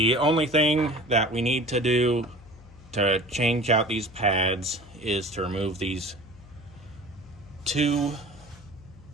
only thing that we need to do to change out these pads is to remove these two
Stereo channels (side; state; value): left; noise; hum, 21 dB below the sound